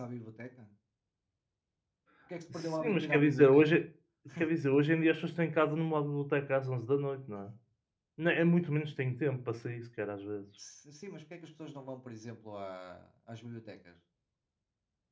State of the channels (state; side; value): identical; both; correlation 1.00